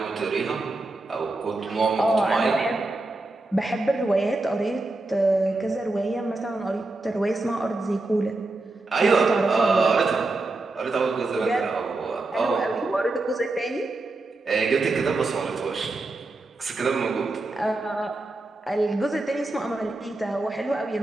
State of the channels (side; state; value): left; quieter; 3.0 dB